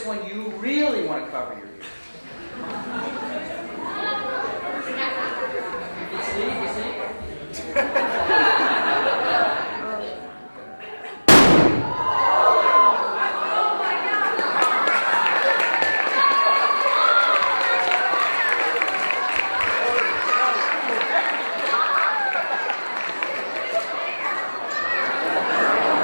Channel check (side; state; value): both; inverted; correlation -1.00